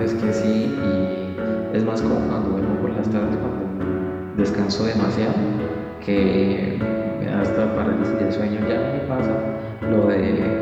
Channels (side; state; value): both; identical; correlation 1.00